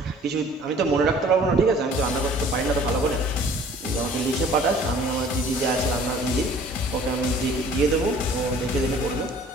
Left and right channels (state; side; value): normal; both; correlation 0.51